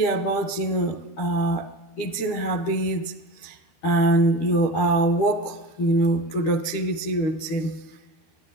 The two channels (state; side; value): late; right; 13 ms